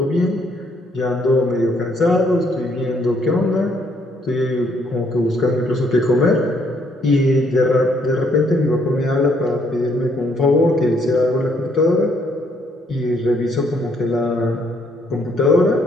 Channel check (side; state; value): both; normal; correlation 0.69